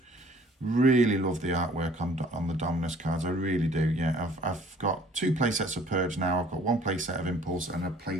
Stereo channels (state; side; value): normal; both; correlation 0.54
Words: Really love the artwork on the Dominus cards. I really do. Yeah, I've got 2 play sets of Purge now. I've got 1 play set of Impulse and a play